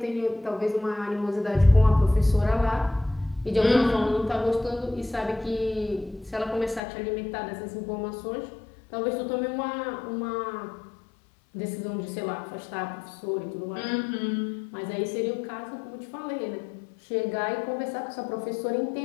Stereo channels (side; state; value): right; drops out; at 6.8 s